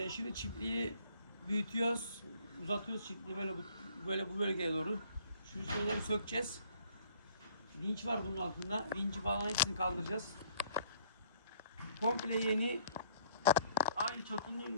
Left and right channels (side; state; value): both; inverted; correlation -0.60